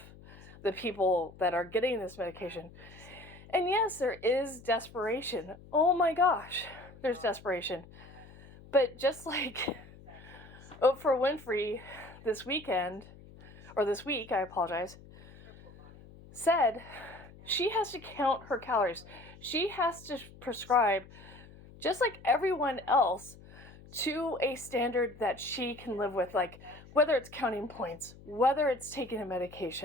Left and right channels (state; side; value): noise; left; hum, 20 dB below the sound